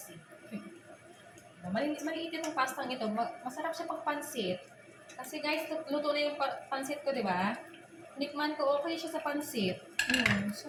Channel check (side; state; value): both; identical; correlation 1.00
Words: Maliit yung pastang ito. Masarap siya pang pansit. Kasi guys, luto na yung pansit ko, di ba? Nikman ko, okay siya sa pansit.